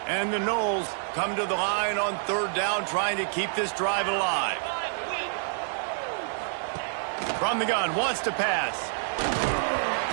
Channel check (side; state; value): left; silent; digital silence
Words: And the Noles come to the line on third down, trying to keep this drive alive. From the gun, wants to pass.